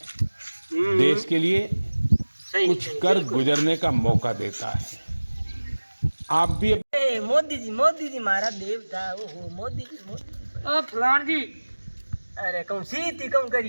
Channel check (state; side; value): inverted; both; correlation -1.00